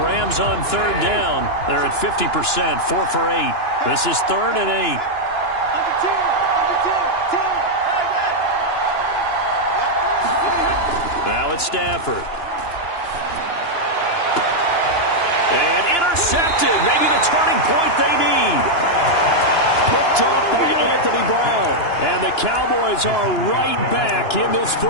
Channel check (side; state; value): right; late; 2.9 ms